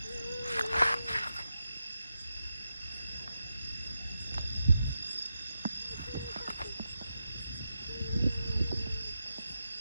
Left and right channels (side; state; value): both; inverted; correlation -0.88